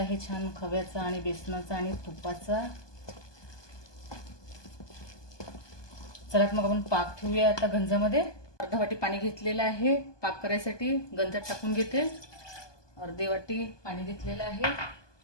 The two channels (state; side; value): late; right; 1.2 ms